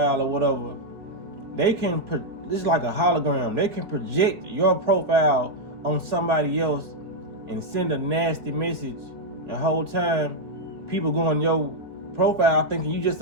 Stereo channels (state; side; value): late; left; 3.7 ms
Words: or whatever, they can. This is like a hologram. They can project your profile on somebody else and send a nasty message. The whole time, people go on your profile thinking you just